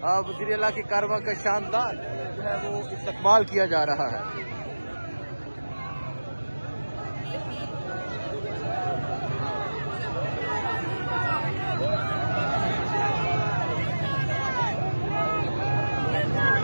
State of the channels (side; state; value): both; inverted; correlation -1.00